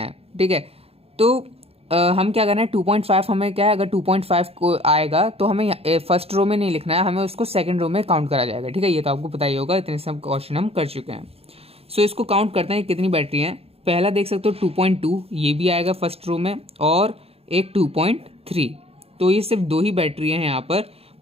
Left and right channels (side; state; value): left; late; 0.29 ms